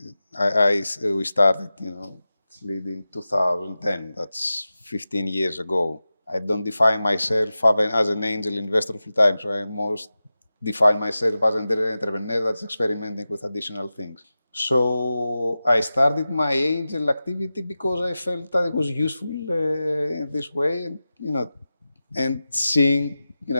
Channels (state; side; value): inverted; both; correlation -0.94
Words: we started, Sleed in 2010. That's 15 years ago. I don't define myself as an angel investor full time, so I most define myself as an entrepreneur that's experimenting with additional things. So I started my angel activity because I felt that it was useful in this way, and seeing,